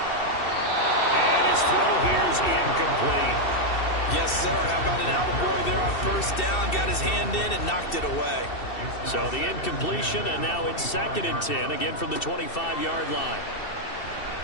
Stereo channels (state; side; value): late; right; 2.7 ms